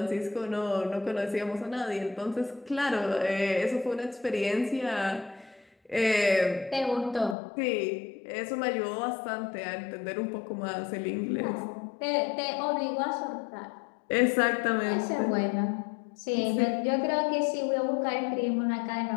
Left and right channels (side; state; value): right; drops out; at 7.4 s